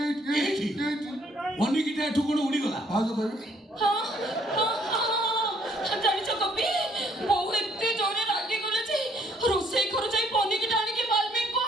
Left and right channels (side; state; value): both; normal; correlation 0.65